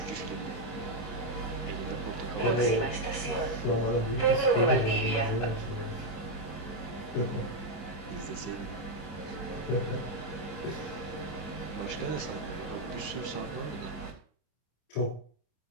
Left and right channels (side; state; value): right; late; 25 ms